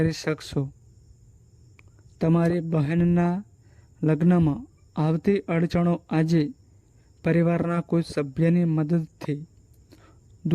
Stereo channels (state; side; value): identical; both; correlation 1.00